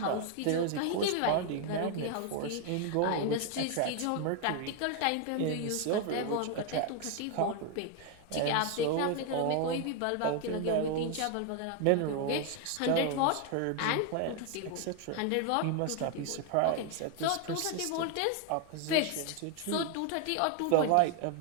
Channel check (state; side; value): different; both; correlation 0.01